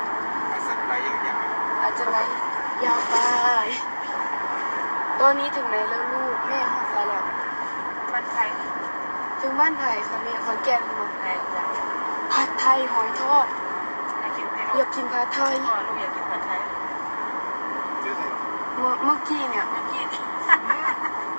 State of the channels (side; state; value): both; inverted; correlation -1.00